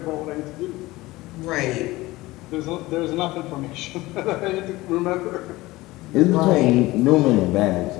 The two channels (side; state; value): right; quieter; 19.4 dB